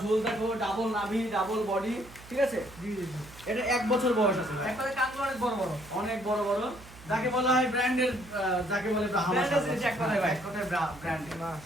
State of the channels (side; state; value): right; noise; hum, 19 dB below the sound